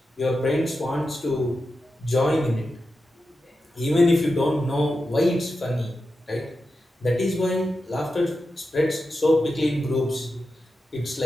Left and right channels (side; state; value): both; normal; correlation 0.90